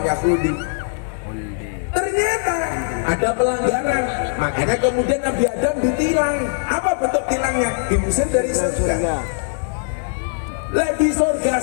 khuldi. Ternyata ada pelanggaran. Makanya kemudian Nabi Adam ditilang. Apa bentuk tilangnya? Diusir dari surga. Lah di surga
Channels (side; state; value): right; silent; 63 dB below the other